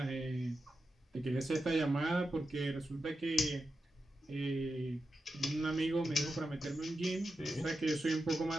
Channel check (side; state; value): both; normal; correlation 0.89